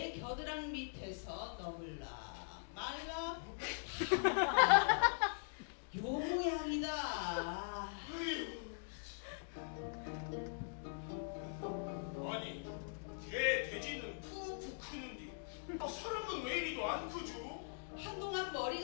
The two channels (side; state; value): right; silent; digital silence